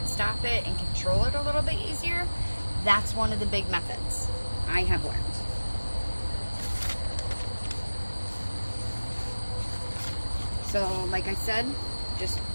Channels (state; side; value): inverted; both; correlation -1.00